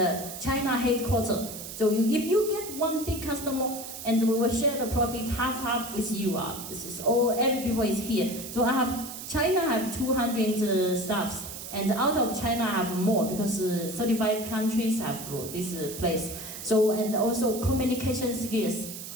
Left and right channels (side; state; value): right; noise; hiss, 10 dB below the sound